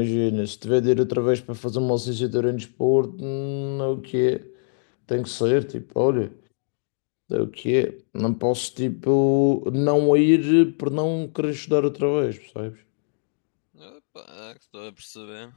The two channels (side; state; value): right; silent; 63 dB below the other